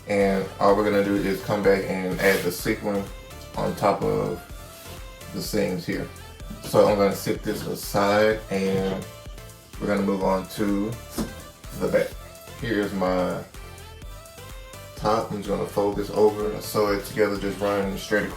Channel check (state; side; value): identical; both; correlation 1.00